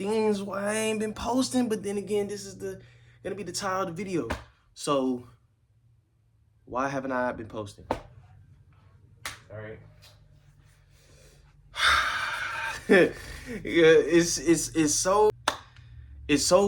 why I ain't been posting. But then again, this is gonna be the title of the video. So why haven't I been posting? All right. Yeah, it's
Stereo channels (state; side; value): identical; both; correlation 1.00